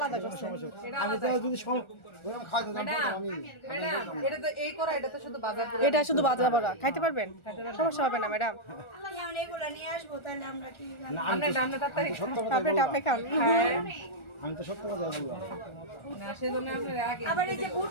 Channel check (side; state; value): right; late; 1.4 ms